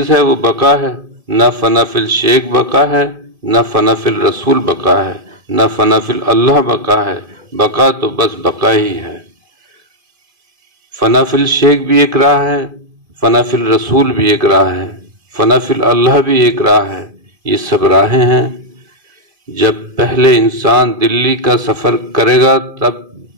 ہے وہ بقا ہے۔ نہ فنا فی الشیک بقا ہے، نہ فنا فی الرسول بقا ہے، نہ فنا فی اللہ بقا ہے۔ بقا تو بس بقا ہی ہے۔ فنا فی الشیک بھی ایک راہ ہے، فنا فی الرسول بھی ایک راہ ہے، فنا فی اللہ بھی ایک راہ ہے۔ یہ سب راہیں ہیں۔ جب پہلے انسان دلی کا سفر کرے گا تب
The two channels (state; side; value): late; left; 2.5 ms